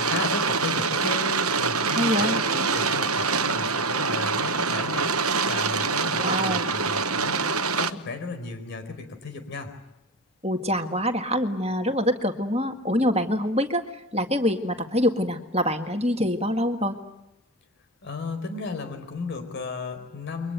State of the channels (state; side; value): normal; both; correlation 0.19